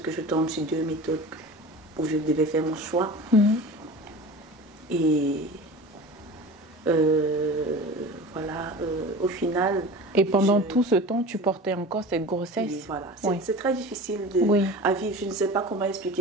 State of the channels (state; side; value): normal; both; correlation 0.35